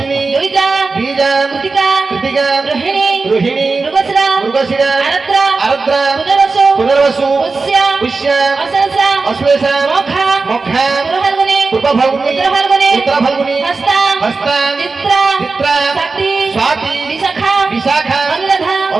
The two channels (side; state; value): left; quieter; 4.0 dB